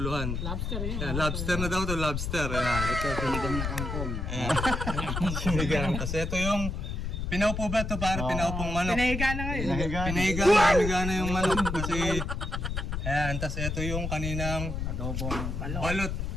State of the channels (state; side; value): noise; left; rumble, 3 dB below the sound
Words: Lobster yun. Yan, lobster na daw to, lobster. Ayan. Ito, sinigang na kangkong. Ayan. Sinigang. Kasi ito yung pinaupo ba ito? Parang pinaupong manok. Pinahiga na ngayon. Pinahiga na yung manok kasi ayan, tas ito yung kaninang Adobong balot.